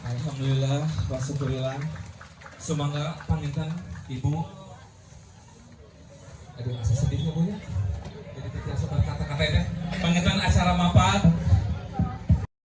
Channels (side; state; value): both; identical; correlation 1.00